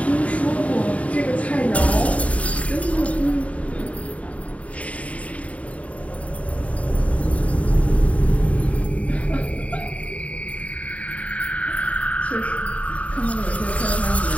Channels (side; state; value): right; late; 0.067 ms